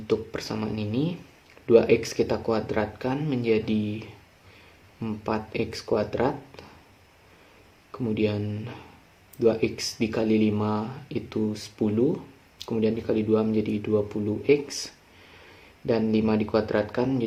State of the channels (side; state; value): both; identical; correlation 1.00